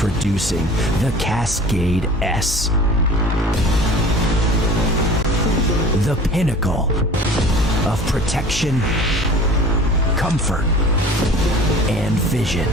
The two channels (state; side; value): normal; both; correlation 0.43